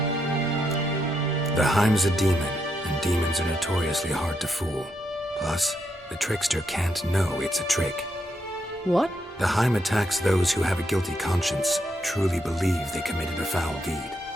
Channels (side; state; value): both; normal; correlation 0.80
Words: Heim's a demon, and demons are notoriously hard to fool. Plus, the trickster can't know it's a trick. What? The Heim attacks those who have a guilty conscience, truly believe they committed a foul deed.